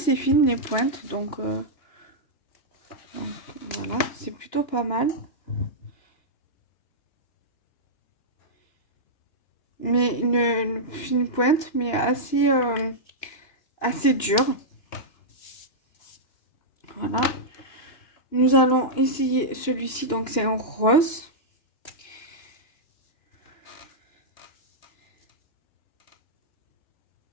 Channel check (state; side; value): late; right; 2.9 ms